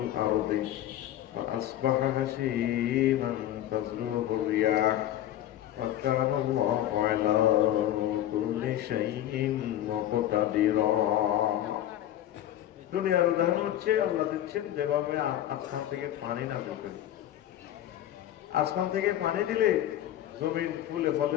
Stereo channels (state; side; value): quieter; right; 12.5 dB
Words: فَأَصْبَحَ هَشِيمًا تَذْرُوهُ الرِّيَاحُ وَكَانَ اللَّهُ عَلَى كُلِّ شَيْءٍ مُقْتَدِرًا। দুনিয়ার উদাহরণ হচ্ছে আল্লাহ দিচ্ছেন যেভাবে আসমান থেকে পানি নামে করি। আসমান থেকে পানি দিলে জমিন ফুলে